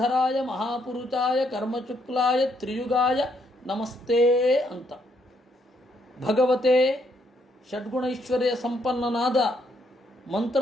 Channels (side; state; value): both; normal; correlation 0.73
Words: ಮಹಾಪುರುಷಾಯ ಕರ್ಮಚುಕ್ಲಾಯ ತ್ರಿಯುಗಾಯ ನಮಸ್ತೆ ಅಂತ. ಭಗವತೆ ಷಡ್ಗುಣೈಶ್ವರ್ಯ ಸಂಪನ್ನನಾದ